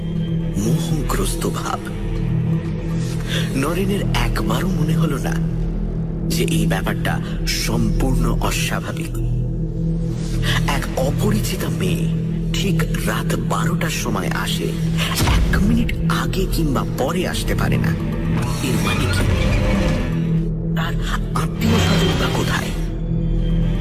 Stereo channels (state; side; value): identical; both; correlation 1.00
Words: মোহগ্রস্ত ভাব। নরেনের একবারও মনে হলো না যে এই ব্যাপারটা সম্পূর্ণ অস্বাভাবিক। এক অপরিচিতা মেয়ে ঠিক রাত 12টার সময় আসে, 1 মিনিট আগে কিংবা পরে আসতে পারে না। এর মানে কি? তার আত্মীয় স্বজন বা কোথায়?